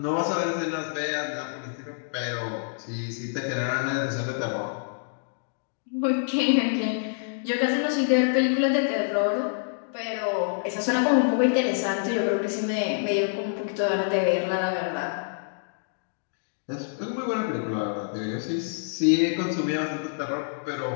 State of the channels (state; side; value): silent; right; digital silence